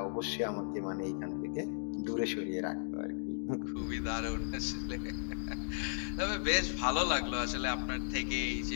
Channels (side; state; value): right; silent; digital silence